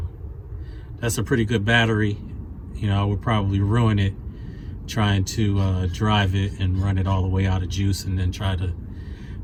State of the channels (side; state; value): both; identical; correlation 1.00